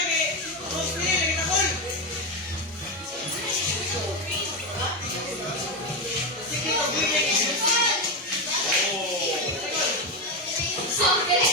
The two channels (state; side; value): normal; both; correlation 0.12